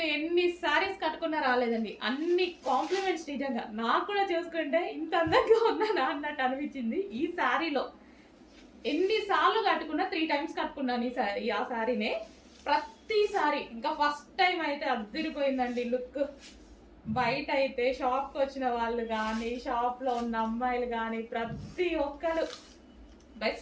ఎన్ని శారీస్ కట్టుకున్నా రాలేదండి. అన్ని కాంప్లిమెంట్స్ నిజంగా. నాకు కూడా చూసుకుంటే ఇంత అందంగా ఉన్నానా అన్నట్టు అనిపించింది. ఈ శారీలో ఎన్నిసార్లు కట్టుకున్నా 3 times కట్టుకున్నాను ఈ శారీ. ఆ శారీనే ప్రతిసారి ఇంకా ఫస్ట్ టైం అయితే అద్దరిపోయిందండి లుక్. బయట అయితే షాప్కి వచ్చిన వాళ్ళు కానీ, షాప్లో ఉన్న అమ్మాయిలు కానీ ప్రతి ఒక్కరు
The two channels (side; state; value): both; identical; correlation 1.00